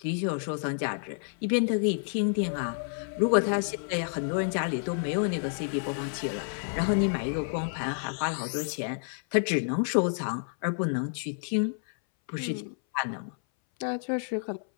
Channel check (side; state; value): right; silent; 58 dB below the other